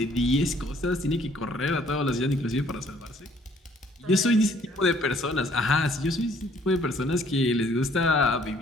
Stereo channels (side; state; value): both; normal; correlation 0.61